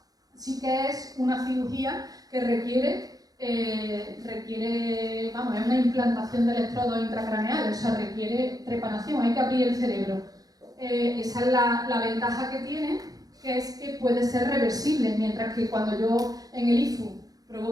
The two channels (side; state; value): left; late; 0.18 ms